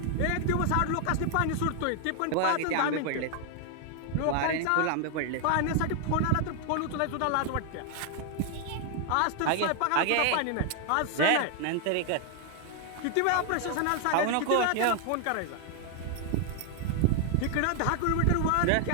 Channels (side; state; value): both; different; correlation 0.00